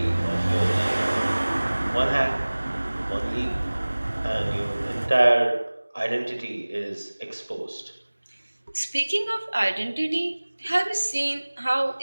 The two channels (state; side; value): inverted; both; correlation -1.00